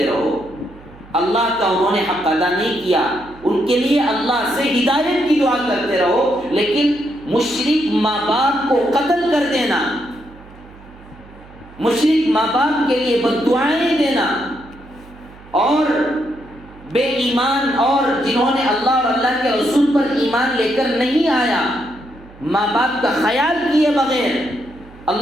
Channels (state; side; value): noise; right; hum, 22 dB below the sound